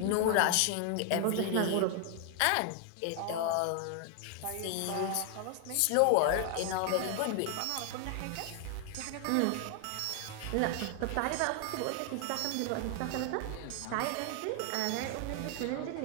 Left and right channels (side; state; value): both; different; correlation 0.00